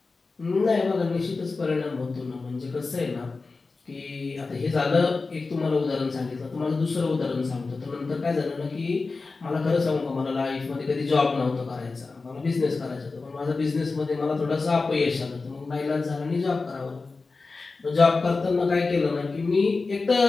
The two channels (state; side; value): quieter; right; 4.0 dB